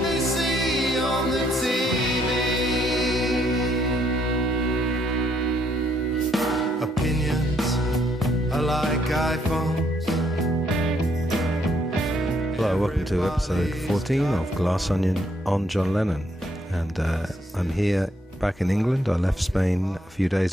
they see on the TV. Opinions are like iPhones. Hello, welcome to episode 14 of Glass Onion on John Lennon. And I'm here back in England. I left Spain a few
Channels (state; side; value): normal; both; correlation 0.71